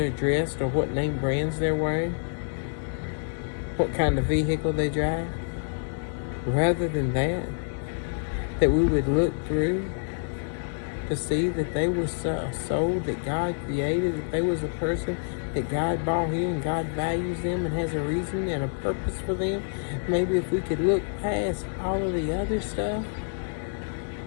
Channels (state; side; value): silent; right; digital silence